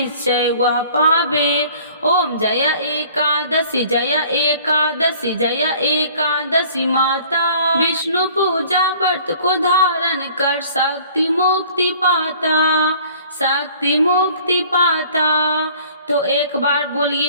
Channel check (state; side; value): inverted; both; correlation -0.52